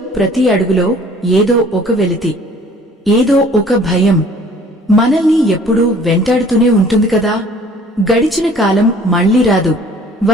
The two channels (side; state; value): both; normal; correlation 0.53